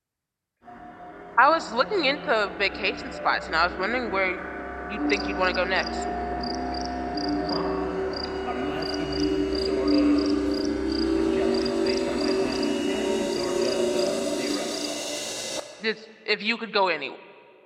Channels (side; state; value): both; identical; correlation 1.00